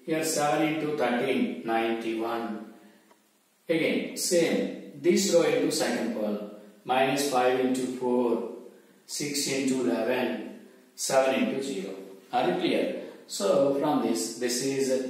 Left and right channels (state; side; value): identical; both; correlation 1.00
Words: Here 7 into 13, 91. Again, same. This row into second column. Minus 5 into 4, 6 into 11, 7 into 0. Are you clear? So from this is